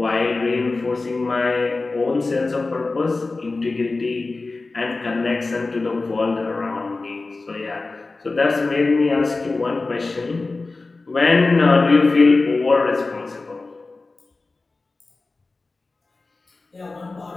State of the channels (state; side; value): quieter; right; 3.6 dB